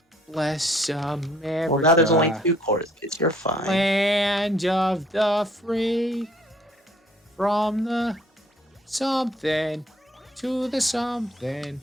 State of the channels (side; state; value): both; normal; correlation 0.61